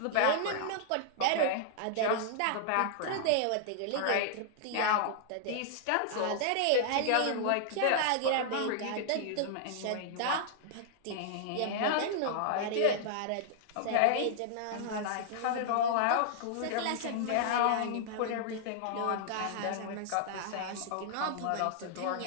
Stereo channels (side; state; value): both; different; correlation -0.01